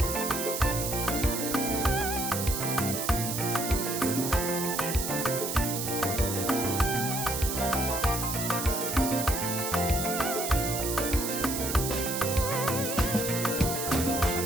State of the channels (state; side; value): noise; right; hiss, 3 dB below the sound